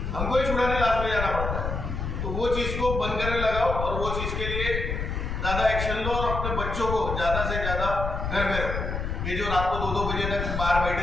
हमको ही छुड़ाने लास्ट में जाना पड़ता है। तो वो चीज़ को बंद करने लगाओ और वो चीज़ के लिए ज़्यादा एक्शन लो और अपने बच्चों को ज़्यादा से ज़्यादा घर में रखो। ये जो रात को 2-2 बजे तक बाहर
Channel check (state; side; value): noise; left; rumble, 3 dB below the sound